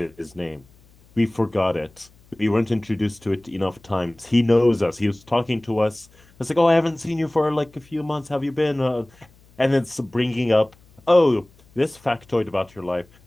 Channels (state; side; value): noise; left; hum, 29 dB below the sound